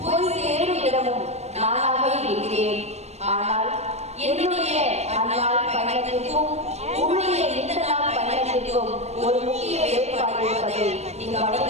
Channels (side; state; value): left; late; 0.31 ms